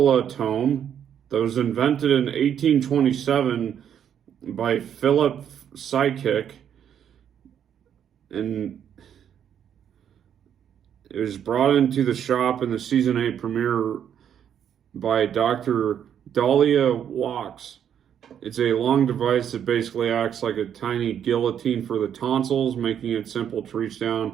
that was invented in 1827 by Philip Psychic, and it was brought into the shop in the season 8 premiere by Dr. Dahlia Walks. It's a long device that basically acts like a tiny guillotine for the tonsils, making it simple to reach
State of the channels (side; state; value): left; quieter; 9.0 dB